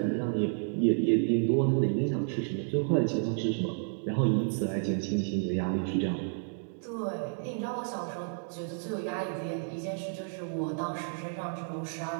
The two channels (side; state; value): left; silent; digital silence